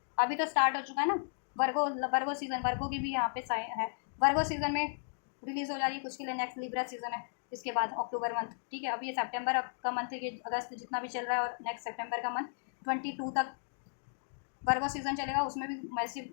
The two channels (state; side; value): silent; right; digital silence